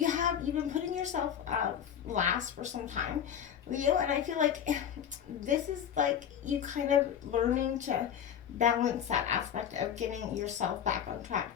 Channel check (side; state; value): right; quieter; 9.0 dB